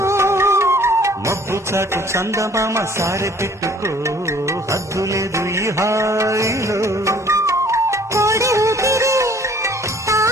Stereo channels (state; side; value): normal; both; correlation 0.55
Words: మబ్బు చాటు చందమామ సారె పెట్టుకో హద్దు లేదు ఈ హాయిలో కోడి ఊపిరి